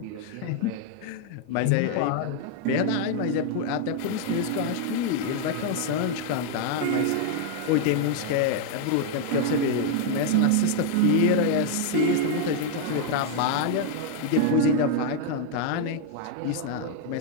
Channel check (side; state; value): both; different; correlation 0.00